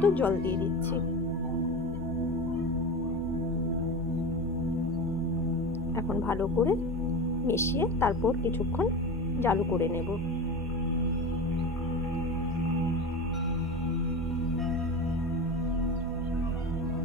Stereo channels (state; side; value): normal; both; correlation 0.26